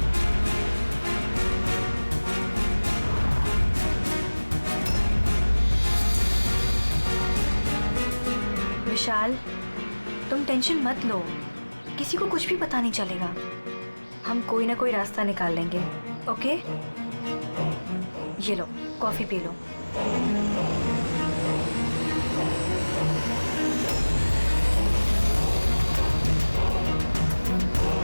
विशाल, तुम टेंशन मत लो, किसी को कुछ भी पता नहीं चलेगा। हम कोई ना कोई रास्ता निकाल लेंगे, ओके? ये लो, कॉफी पी लो।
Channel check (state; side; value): inverted; both; correlation -1.00